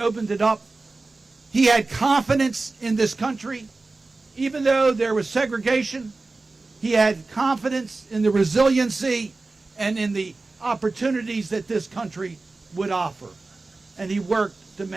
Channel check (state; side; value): quieter; left; 3.5 dB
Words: it up. He had confidence in this country. Even though there was segregation, he had confidence in the resiliency and in the opportunities that this country would offer. And he worked to